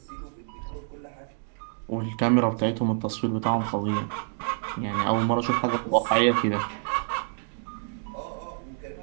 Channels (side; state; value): left; silent; 60 dB below the other